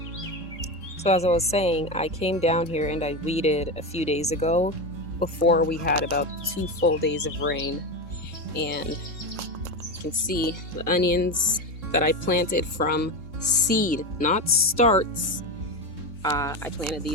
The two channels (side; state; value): left; late; 3.7 ms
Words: So as I was saying, I came down here and I weeded a few days ago before we had about 2 full days of rain. And you can see the onions that I planted from seed, not starts. I planted